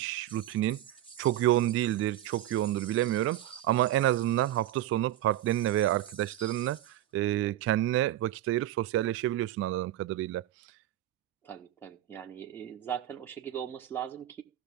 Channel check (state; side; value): quieter; left; 13.4 dB